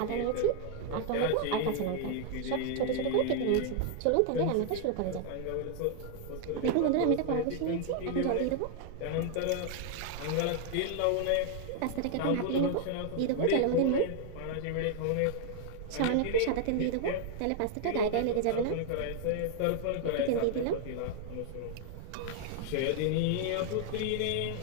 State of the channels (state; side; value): different; both; correlation 0.00